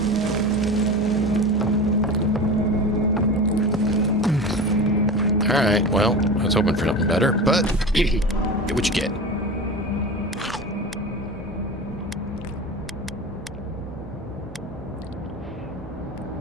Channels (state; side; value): normal; both; correlation 0.29